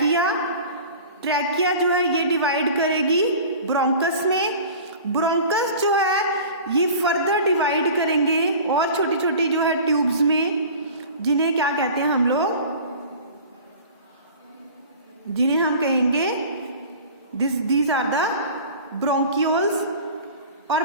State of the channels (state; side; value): inverted; both; correlation -0.40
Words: ट्रैकिया जो है ये डिवाइड करेगी ब्रोंकस में। ब्रोंकस जो है ये फर्दर डिवाइड करेंगे और छोटी छोटी जो है ट्यूब्स में, जिन्हें क्या कहते हैं हम लोग? जिन्हें हम कहेंगे दीज आर द ब्रोंकियोल्स, और